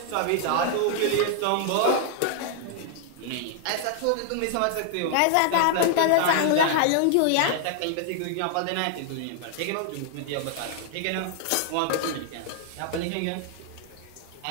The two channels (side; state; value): both; different; correlation 0.00